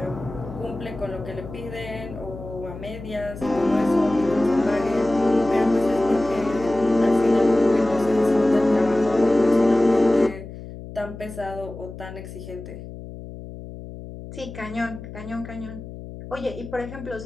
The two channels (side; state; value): left; noise; hum, 13 dB below the sound